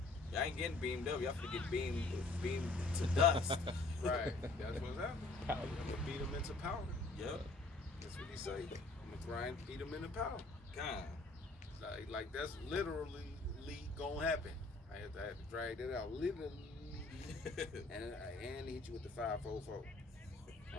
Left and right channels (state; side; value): quieter; right; 3.2 dB